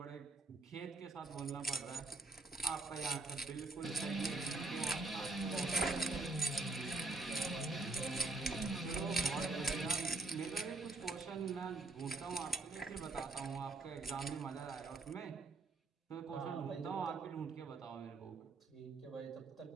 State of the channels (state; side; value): quieter; left; 3.3 dB